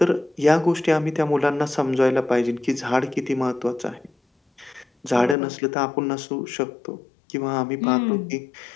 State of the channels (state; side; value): drops out; right; at 5.4 s